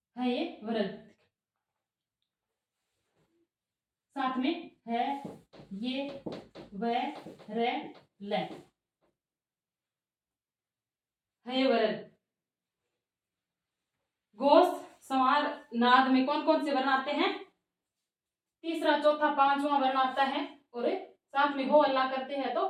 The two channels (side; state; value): both; identical; correlation 1.00